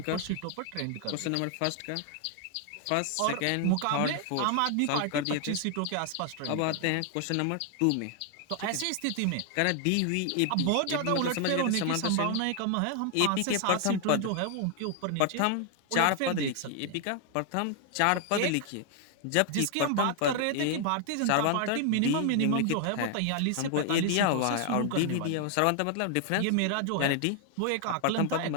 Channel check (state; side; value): different; both; correlation 0.00